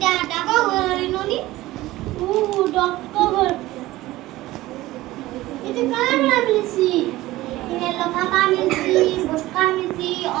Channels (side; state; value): left; quieter; 17.3 dB